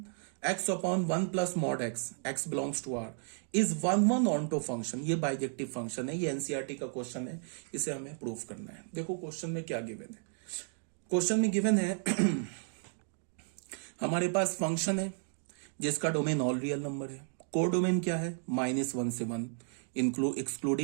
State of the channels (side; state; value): left; silent; 56 dB below the other